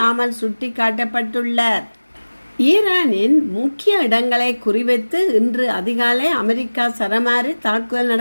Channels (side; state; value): both; inverted; correlation -1.00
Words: சுட்டி காட்டப்பட்டுள்ளார். ஈரானின் முக்கிய இடங்களை குறிவைத்து இன்று அதிகாலை அமெரிக்கா சரமாரி தாக்குதல்